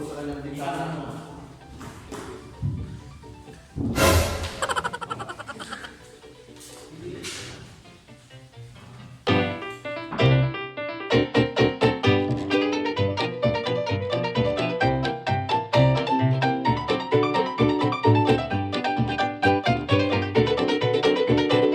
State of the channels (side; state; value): both; identical; correlation 1.00